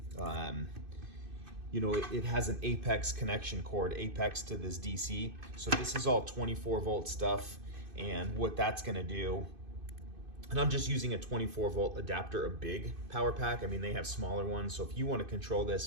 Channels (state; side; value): late; left; 2.5 ms